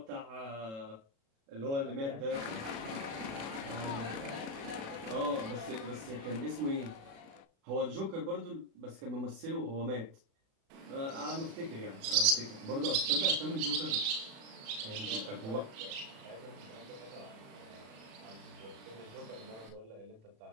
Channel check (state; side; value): late; left; 36 ms